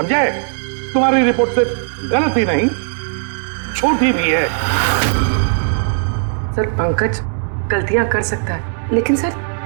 तुम्हारी रिपोर्ट सिर्फ गलत ही नहीं, झूठी भी है। सर पंकज गलतियां कर सकता है, लेकिन सर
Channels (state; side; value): silent; left; 66 dB below the other